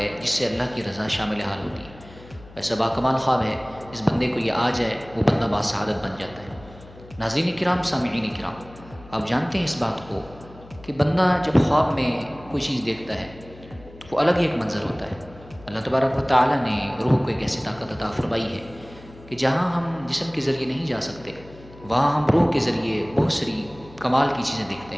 جس سے اللہ کی رضا شامل حال ہوتی ہے۔ ایسا باکمال خواب ہے جس بندے کو یہ آ جائے وہ بندہ باسعادت بن جاتا ہے۔ ناظرین کرام، سامعین کرام، آپ جانتے ہیں اس بات کو کہ بندہ جب خواب میں کوئی چیز دیکھتا ہے تو وہ الگ ہی ایک منظر ہوتا ہے۔ اللہ تبارک و تعالیٰ نے روح کو ایک ایسی طاقت عطا فرمائی ہے کہ جہاں ہم جسم کے ذریعے نہیں جا سکتے وہاں ہم روح کے ذریعے بہت ساری کمال کی چیزیں دیکھتے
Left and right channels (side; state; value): left; noise; hum, 20 dB below the sound